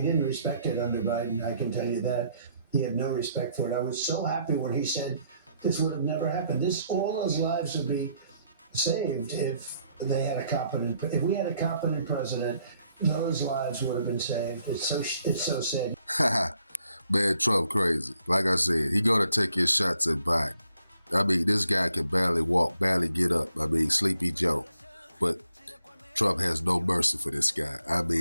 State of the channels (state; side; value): inverted; both; correlation -0.71